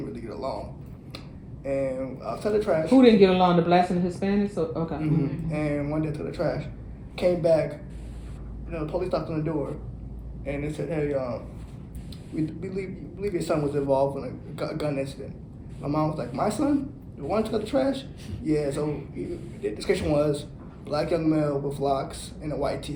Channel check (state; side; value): identical; both; correlation 1.00